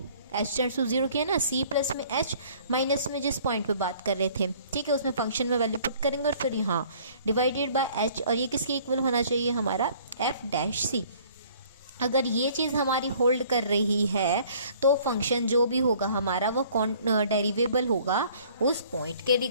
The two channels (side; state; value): both; inverted; correlation -0.55